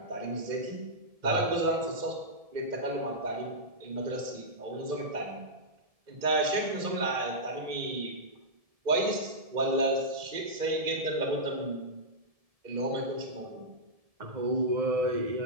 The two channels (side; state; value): left; late; 1.7 ms